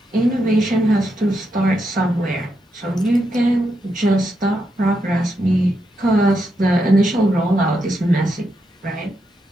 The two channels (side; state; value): both; normal; correlation 0.82